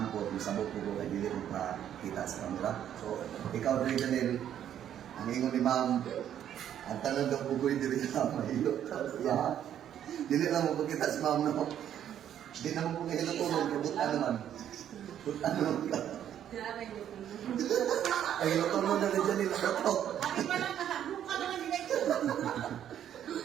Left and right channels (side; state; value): left; quieter; 10.2 dB